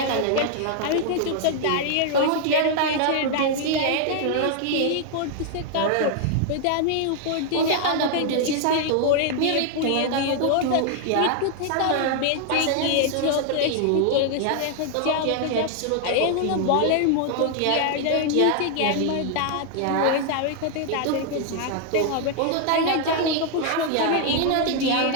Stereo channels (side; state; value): both; different; correlation 0.00